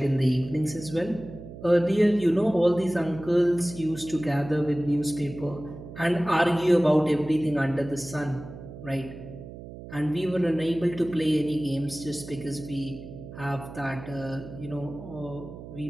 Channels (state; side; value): noise; right; hum, 13 dB below the sound